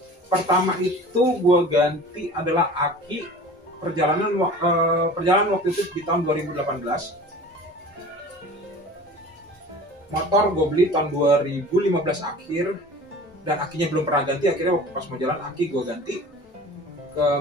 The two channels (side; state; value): both; normal; correlation 0.41